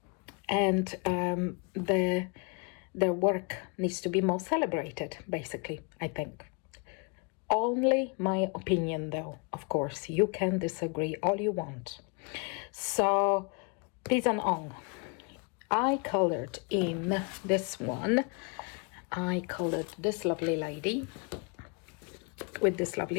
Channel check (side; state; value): right; quieter; 33.9 dB